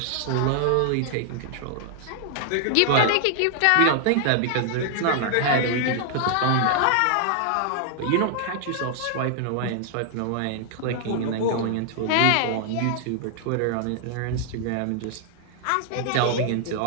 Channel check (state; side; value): different; both; correlation 0.00